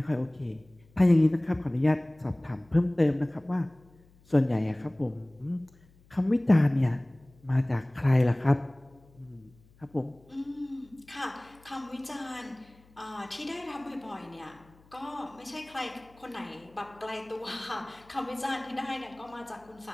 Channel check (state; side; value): noise; left; hum, 28 dB below the sound